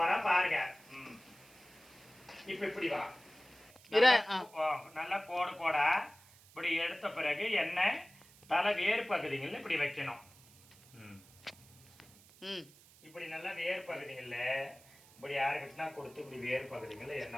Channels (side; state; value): right; noise; hiss, 24 dB below the sound